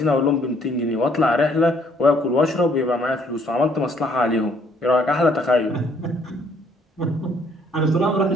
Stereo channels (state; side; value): normal; both; correlation 0.64